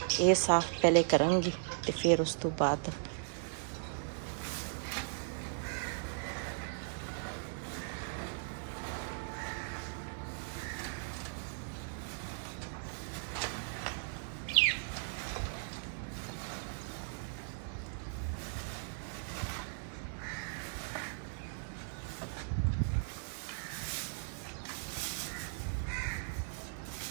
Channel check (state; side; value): silent; left; 53 dB below the other